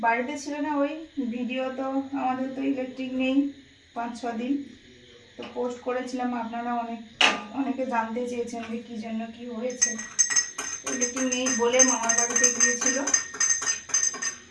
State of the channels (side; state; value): both; identical; correlation 1.00